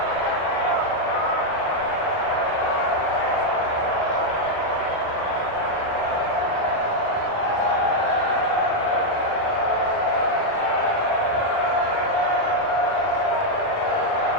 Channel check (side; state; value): right; late; 38 ms